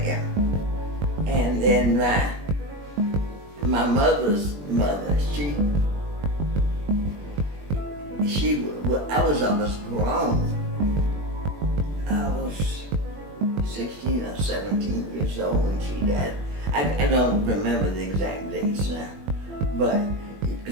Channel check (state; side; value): late; left; 21 ms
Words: and then my mother's mother, I was almost grown. I was 16 or 17 years old when she died. I don't remember the exact dates now, but